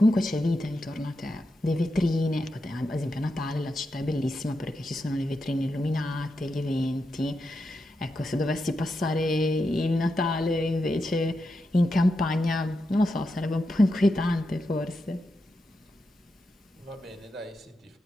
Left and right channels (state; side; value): normal; both; correlation 0.87